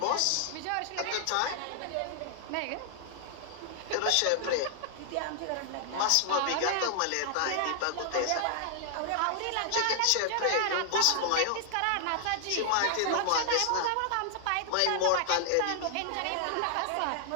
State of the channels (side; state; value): both; different; correlation 0.00